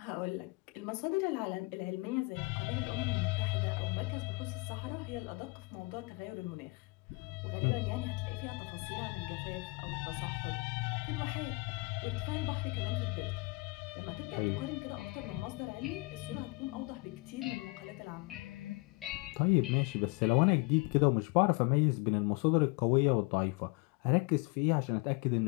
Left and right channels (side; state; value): right; quieter; 26.8 dB